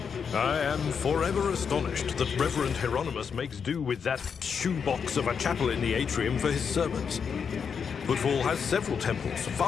I am forever astonished that Reverend Hieronymus makes do with that shoebox of a chapel in the atrium for his sermons. Footfall has several temples,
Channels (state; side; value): quieter; right; 6.5 dB